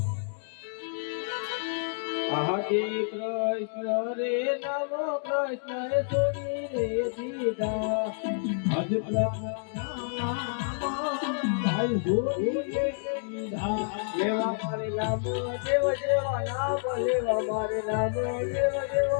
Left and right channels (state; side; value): silent; right; digital silence